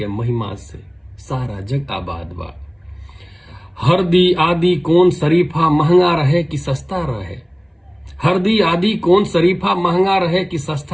महिमा से सारा जग आबाद बा। हरदी आदि कौन शरीफा महंगा रहे कि सस्ता रहे। हरदी आदि कौन शरीफा महंगा रहे कि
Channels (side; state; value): both; identical; correlation 1.00